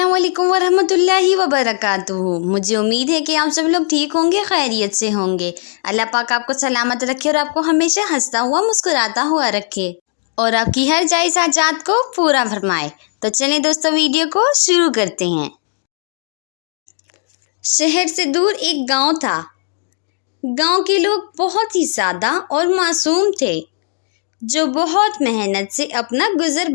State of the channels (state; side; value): silent; right; 68 dB below the other